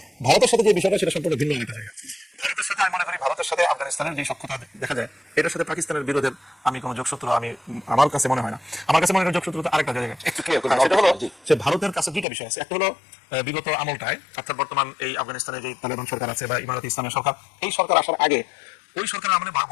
ভারতের সাথে যে বিষয়টা, সেটা সম্পূর্ণ ভিন্ন একটা জায়গা। ভারতের সাথে আমি মনে করি ভারতের সাথে আফগানিস্তানের যে সক্ষতা দেখা যায়, এটার সাথে পাকিস্তানের বিরোধের আমি কোনো যোগসূত্র আমার কাছে মনে হয় না। আমার কাছে মনে হয় যোগসূত্র আরেকটা জায়গায়। সেটা হলো যে ভারতের কাছে দুইটা বিষয় আছে। একটা হলো বিগত আমলটায়, অর্থাৎ বর্তমান এই আফগানিস্তানে যে তালেবান সরকার আছে বা ইমারাত ইসলামের সরকার, এই সরকার আসার আগে ওই সরকারের আমলে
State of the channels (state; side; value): drops out; right; at 12.2 s